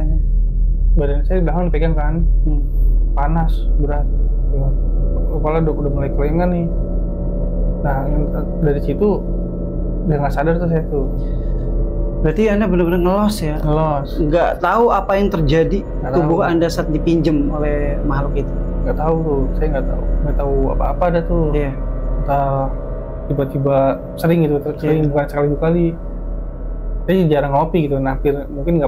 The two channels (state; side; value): identical; both; correlation 1.00